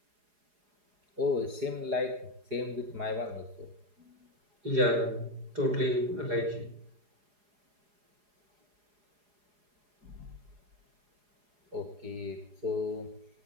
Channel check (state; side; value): late; left; 4.8 ms